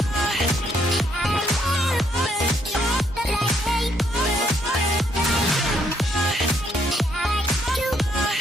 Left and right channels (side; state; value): both; normal; correlation 0.71